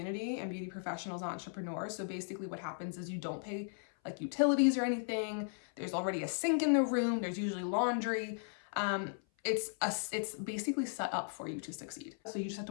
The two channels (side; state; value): right; silent; 53 dB below the other